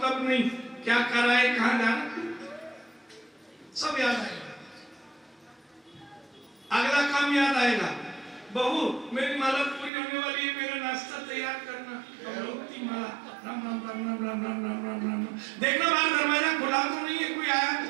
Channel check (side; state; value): left; drops out; at 9.9 s